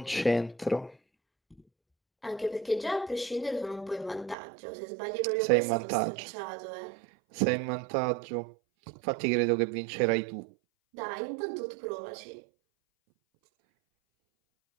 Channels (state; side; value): drops out; left; at 4.4 s